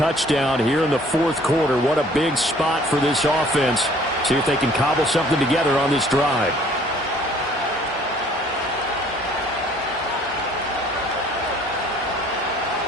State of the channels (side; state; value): both; normal; correlation 0.56